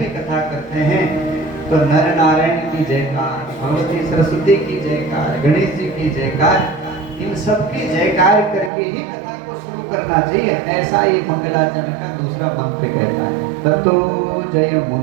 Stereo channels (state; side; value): drops out; left; at 8.7 s